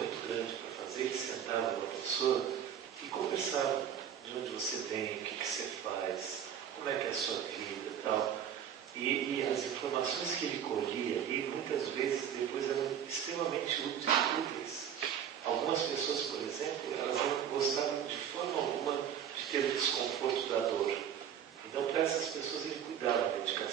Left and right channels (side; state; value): left; quieter; 9.1 dB